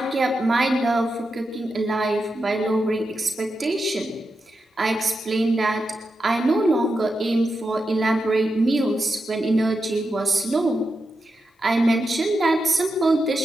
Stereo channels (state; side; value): normal; both; correlation 0.88